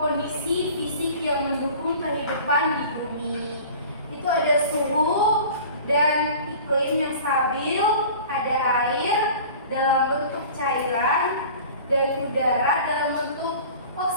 fisik yang mendukung kehidupan di bumi. Itu ada suhu dan iklim yang stabil, ada air dalam bentuk cairan dan udara dalam bentuk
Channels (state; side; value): inverted; both; correlation -0.42